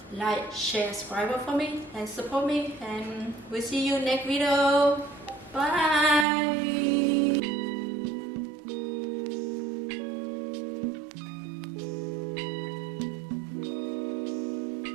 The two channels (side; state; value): left; drops out; at 6.2 s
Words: like, share, subscribe for me and support me, and we'll see you next video. Bye.